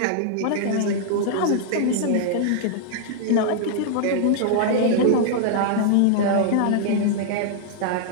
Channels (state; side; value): different; both; correlation -0.01